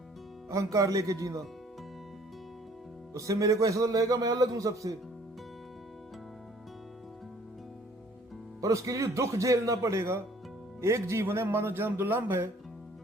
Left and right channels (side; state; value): both; normal; correlation 0.57